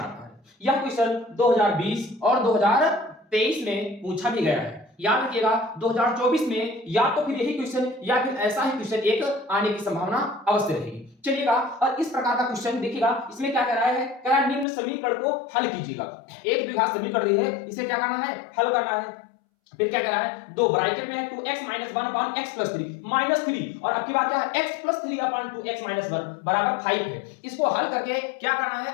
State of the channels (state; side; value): drops out; right; at 14.7 s